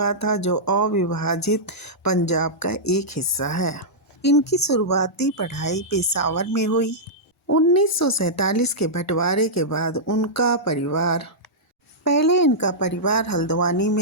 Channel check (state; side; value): normal; both; correlation -0.11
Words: था जो अविभाजित पंजाब का एक हिस्सा है। इनकी शुरुआती पढ़ाई पेशावर में हुई। 1947 के बंटवारे के बाद इनका परिवार हल्द्वानी